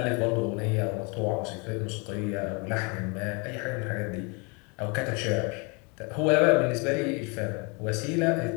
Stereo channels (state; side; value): quieter; right; 31.6 dB